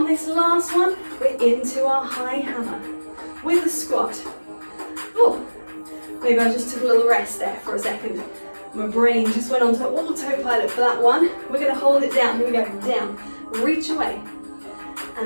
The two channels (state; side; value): inverted; both; correlation -1.00